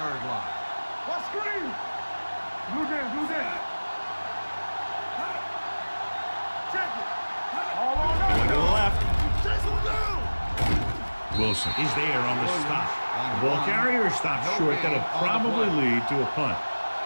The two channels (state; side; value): inverted; both; correlation -1.00